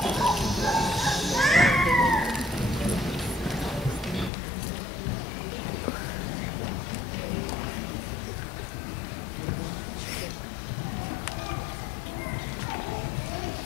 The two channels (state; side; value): drops out; right; at 4.3 s